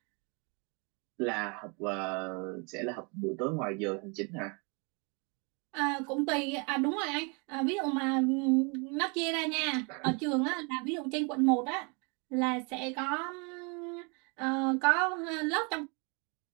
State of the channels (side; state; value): left; quieter; 33.0 dB